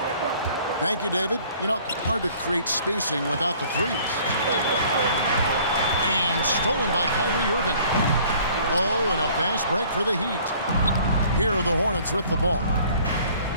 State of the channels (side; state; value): both; inverted; correlation -0.54